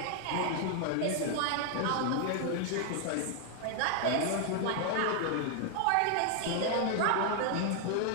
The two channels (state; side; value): different; both; correlation 0.00